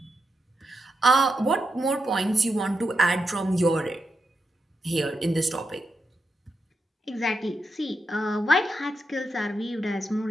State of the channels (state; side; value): normal; both; correlation 0.86